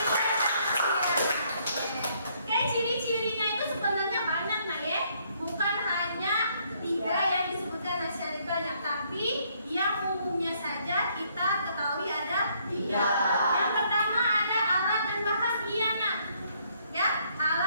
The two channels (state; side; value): inverted; both; correlation -0.69